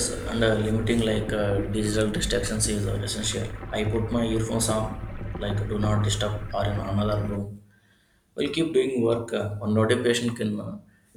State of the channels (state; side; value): identical; both; correlation 1.00